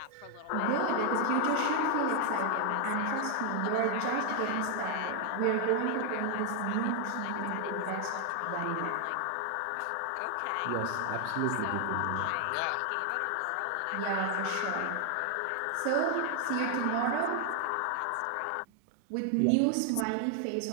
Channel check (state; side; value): different; both; correlation 0.00